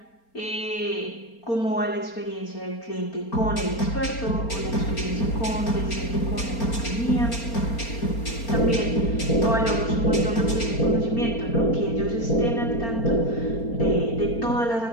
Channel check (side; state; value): right; late; 4.3 ms